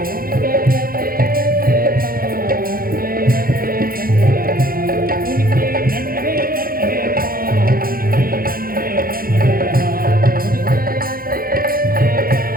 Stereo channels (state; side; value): late; left; 0.42 ms